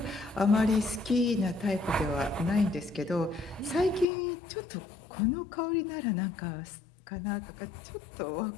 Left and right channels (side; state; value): right; drops out; at 4.0 s